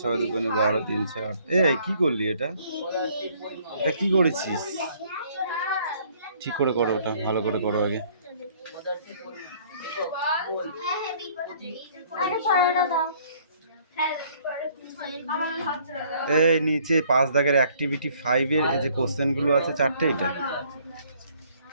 ছয় দুগুণে 12 3 4 এই কি করলি এটা পদার্থের পরিমাপ এটা কি করেছিস ঠিক করে করো ওটা ভালো করে করো আগে পদার্থের পরিমাপ একক ভোল্ট আরে পড়াটা দাও হ্যাঁ পড়ে আমার হাত ছেড়ে দাও এই নিচে 5 দাগের অ্যাক্টিভিটি 5 এর এই যে কোশ্চেনগুলো আছে চারটে এটা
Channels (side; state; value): both; inverted; correlation -0.60